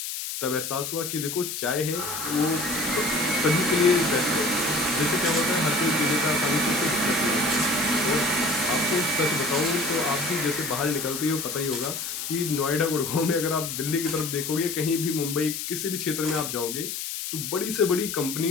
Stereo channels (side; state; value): left; noise; hiss, 5 dB below the sound